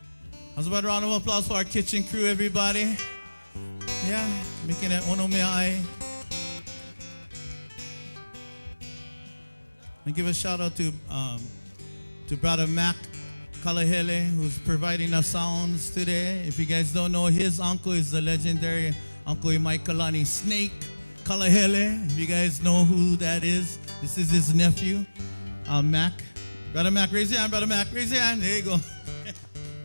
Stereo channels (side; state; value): both; inverted; correlation -1.00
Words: how's about a round of applause for our kitchen crew, everybody? Yeah, making it ono mea ai. And give a shout out to to Brother Mac Kalahele, who's providing the sounds today. If you guys don't know, his uncle is the legendary Uncle Imaikalani Snake Kalahele. If you guys know who that is, this is his nephew, Mac. Brother Mac, raise your hand, Brother Mac, raise your hand. There you go.